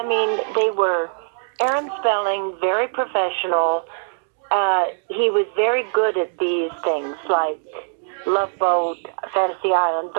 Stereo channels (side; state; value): left; silent; digital silence